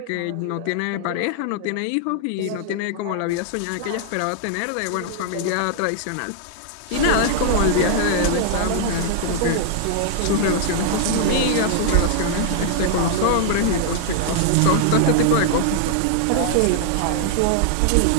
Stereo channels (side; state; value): both; different; correlation -0.01